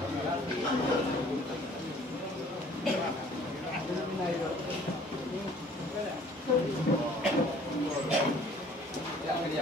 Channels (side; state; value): both; normal; correlation 0.54